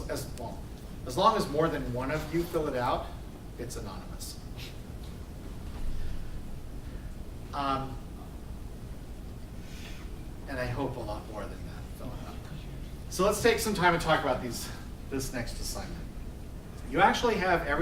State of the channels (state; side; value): identical; both; correlation 1.00